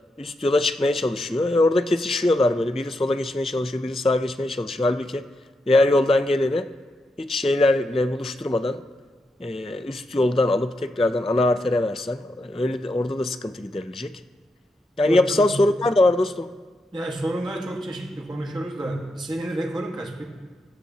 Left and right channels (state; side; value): normal; both; correlation 0.84